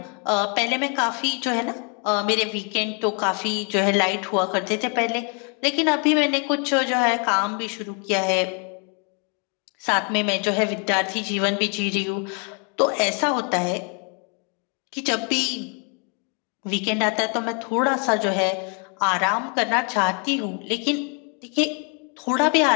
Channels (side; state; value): right; quieter; 36.4 dB